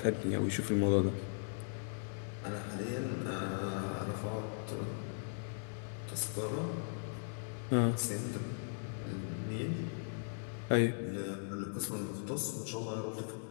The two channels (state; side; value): silent; right; digital silence